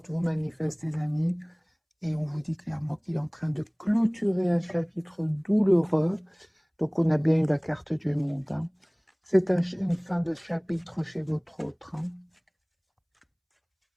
vous manifeste, les amis, et on vous dit clairement qu'il est en train de clôturer un chapitre douloureux. Donc, on a bien eu la carte du monde, hein. C'est une fin de chapitre chez votre autre, hein.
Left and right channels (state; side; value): identical; both; correlation 1.00